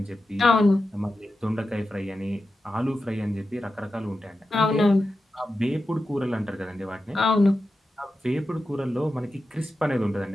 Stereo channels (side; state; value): both; normal; correlation 0.91